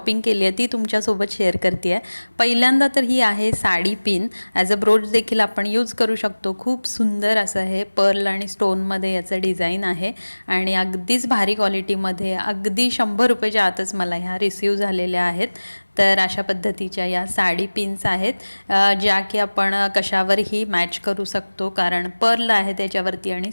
केली आहे ती तुमच्यासोबत शेअर करते आहे. पहिल्यांदा तर ही आहे sari pin. As a broach देखील आपण यूज करू शकतो. खूप सुंदर असं हे पर्ल आणि स्टोनमध्ये याचं डिझाईन आहे आणि अगदीच भारी क्वालिटीमध्ये अगदी 100 रुपयाच्या आतच मला ह्या रिसीव झालेल्या आहेत. तर अशा पद्धतीच्या या साडी पिन्स आहेत, ज्या की आपण कशावरही मॅच करू शकतो, कारण पर्ल आहे त्याच्यावरती आणि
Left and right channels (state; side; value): inverted; both; correlation -1.00